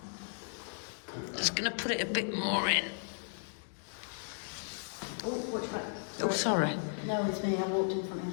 Just going to put it a bit more in. Oh, which one? Oh, sorry. No, it's me. I walked in front of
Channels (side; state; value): right; silent; digital silence